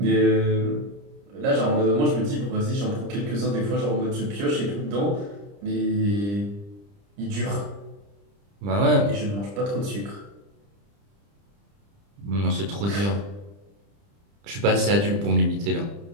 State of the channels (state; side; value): late; left; 30 ms